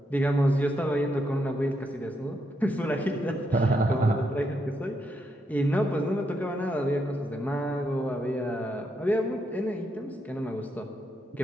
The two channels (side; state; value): both; normal; correlation 0.79